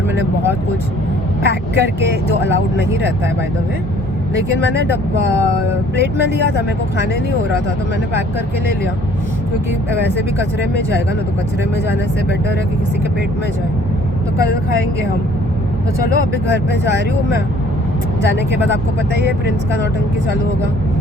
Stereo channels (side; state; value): both; normal; correlation 0.56